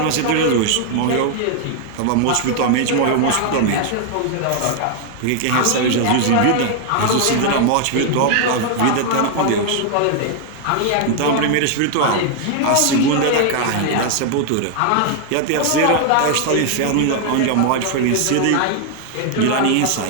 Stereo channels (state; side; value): different; both; correlation 0.00